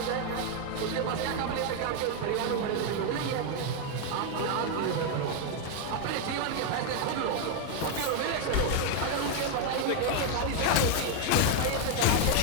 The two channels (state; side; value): different; both; correlation 0.01